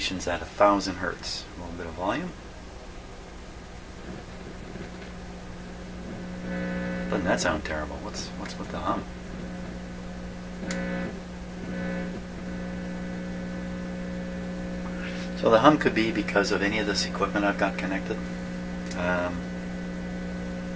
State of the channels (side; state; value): both; identical; correlation 1.00